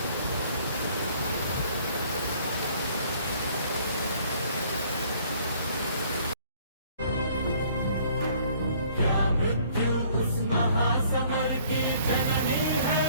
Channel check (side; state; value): both; inverted; correlation -0.58